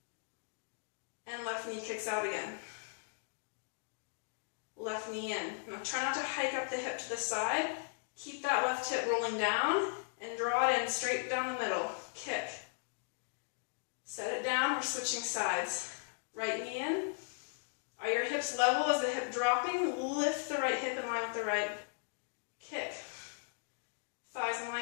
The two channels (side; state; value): right; silent; digital silence